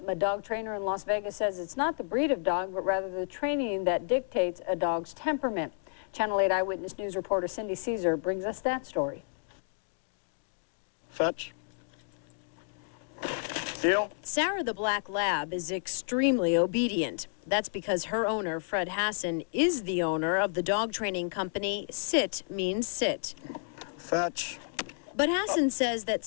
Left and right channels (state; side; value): silent; right; digital silence